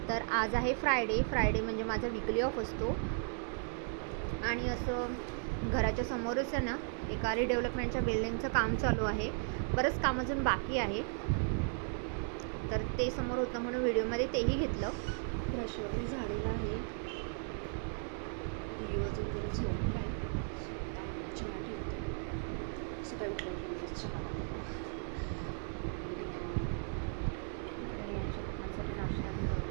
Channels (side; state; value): left; silent; 54 dB below the other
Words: तर आज आहे फ्रायडे म्हणजे माझा वीकली ऑफ असतो. आणि असं घराच्या समोरच आहे ना, एका रिडेव्हलपमेंटच्या बिल्डिंगचं काम चालू आहे. बरंच काम अजून बाकी आहे. तर ते समोर होतं म्हणून व्हिडिओमध्ये तेही घेतलं. ब्रश वगैरे झालेला आहे. अजून जरा झोप आहे. चहा ठेवते. सकाळी उठल्यावर चहा